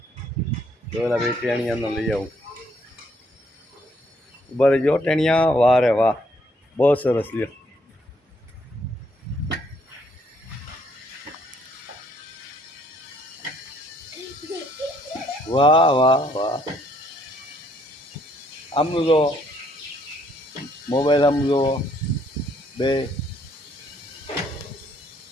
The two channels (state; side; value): normal; both; correlation 0.68